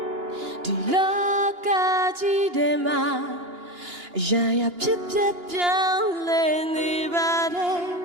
ဒီလောကကြီးထဲမှာရာရာဖြစ်ပျက်ပြောင်းလဲနေပါတယ်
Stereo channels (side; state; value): left; late; 2.9 ms